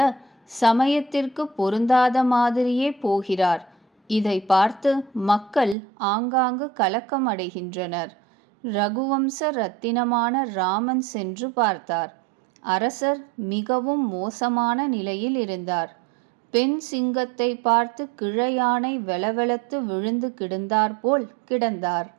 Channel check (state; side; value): drops out; left; at 5.8 s